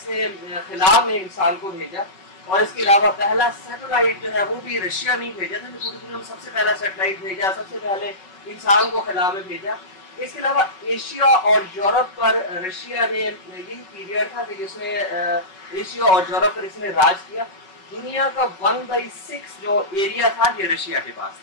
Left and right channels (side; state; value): right; late; 5.3 ms